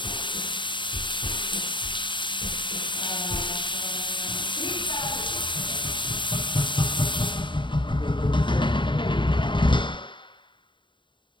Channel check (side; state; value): right; late; 0.23 ms